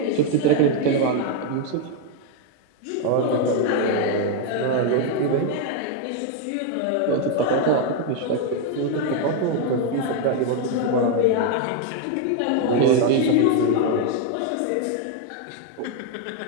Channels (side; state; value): both; different; correlation 0.01